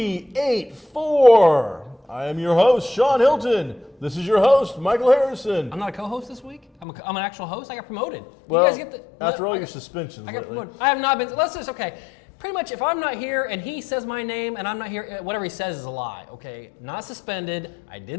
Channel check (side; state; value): right; drops out; at 6.9 s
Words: I am your host, Shawn Hilton. This is your host, Michael Harrison. I'm not a co-host this week? I'm an actual host? I got promoted. Well, you guys get after all your suspensions I got lately. promoted. I have not been, let's just, okay. Pretty much, if I'm not here and he says my name and I'm not here, whatever he says is a lie, okay? Not suspended. I